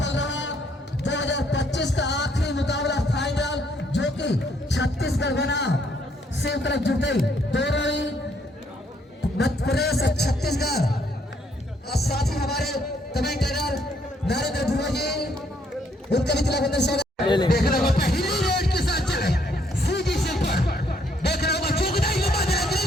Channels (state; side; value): normal; both; correlation 0.69